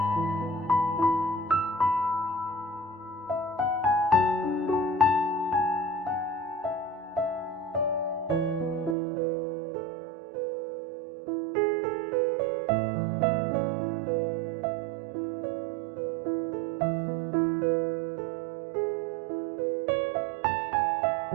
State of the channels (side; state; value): left; drops out; at 9.0 s